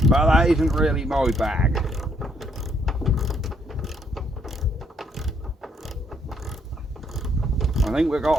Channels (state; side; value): normal; both; correlation 0.70